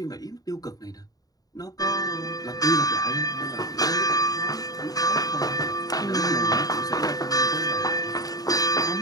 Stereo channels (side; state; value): right; late; 0.18 ms